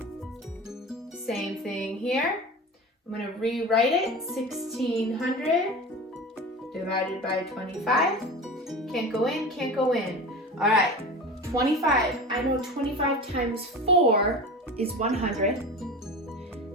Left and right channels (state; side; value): normal; both; correlation 0.32